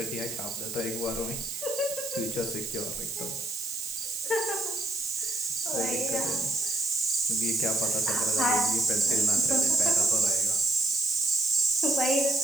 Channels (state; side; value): noise; right; hiss, 8 dB below the sound